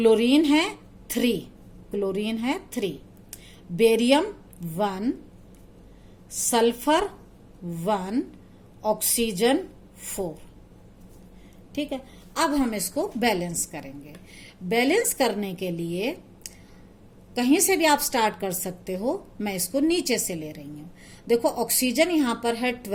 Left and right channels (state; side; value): identical; both; correlation 1.00